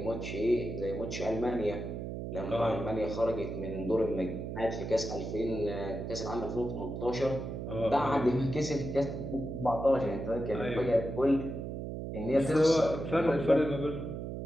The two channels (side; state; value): right; noise; hum, 6 dB below the sound